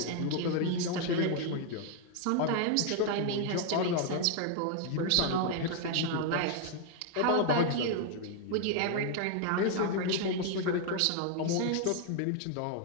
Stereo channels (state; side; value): different; both; correlation 0.00